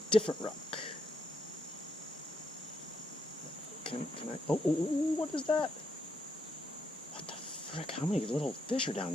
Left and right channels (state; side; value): normal; both; correlation 0.78